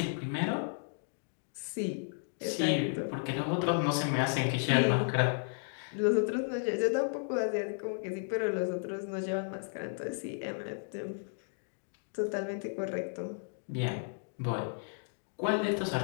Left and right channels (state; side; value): silent; right; digital silence